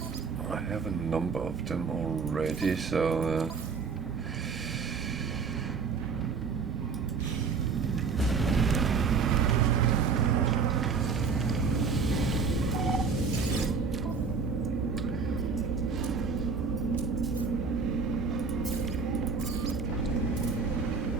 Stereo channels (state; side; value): quieter; left; 5.2 dB